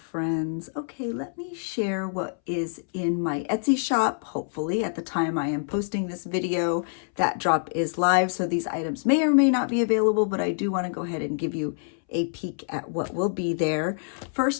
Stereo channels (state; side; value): silent; right; 61 dB below the other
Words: Okay, let me share what is in my Etsy shop. Hopefully at the time I am posting this video, that drop is live, so these items may or may not be available, but I do want to go ahead and give you a peek at what will be there.